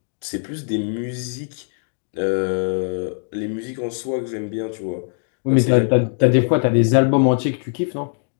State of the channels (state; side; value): silent; right; 63 dB below the other